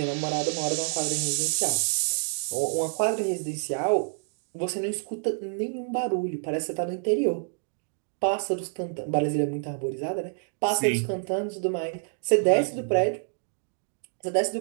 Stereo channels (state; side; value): silent; left; digital silence